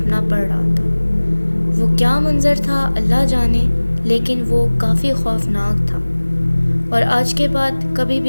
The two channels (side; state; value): both; inverted; correlation -1.00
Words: پڑ رہا تھا۔ وہ کیا منظر تھا اللہ جانے، لیکن وہ کافی خوفناک تھا۔ اور آج کے بعد کبھی